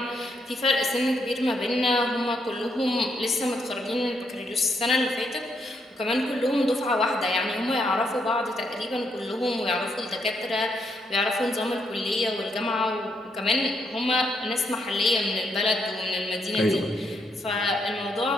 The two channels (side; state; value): both; normal; correlation 0.76